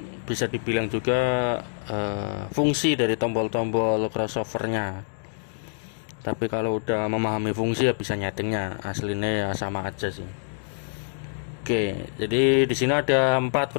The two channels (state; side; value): silent; right; digital silence